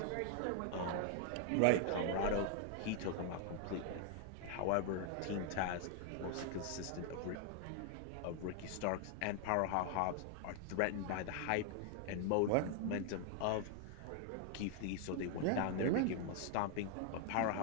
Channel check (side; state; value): both; different; correlation 0.00